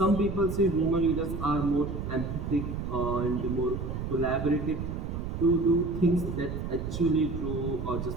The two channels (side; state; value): right; noise; rumble, 4 dB below the sound